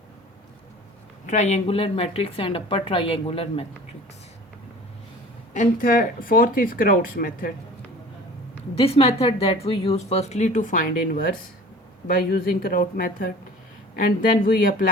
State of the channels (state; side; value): normal; both; correlation 0.44